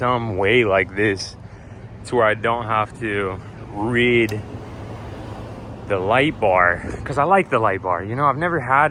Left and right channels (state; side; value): identical; both; correlation 1.00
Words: way like this to where I don't have to rid the light bar, because I like the light bar. You know, I've never had